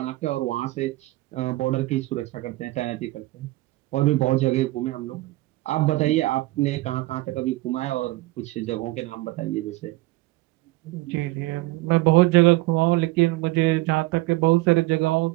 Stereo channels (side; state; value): left; quieter; 19.6 dB